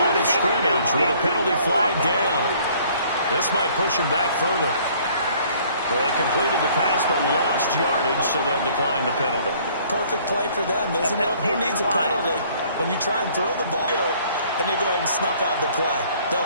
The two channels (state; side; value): inverted; both; correlation -0.58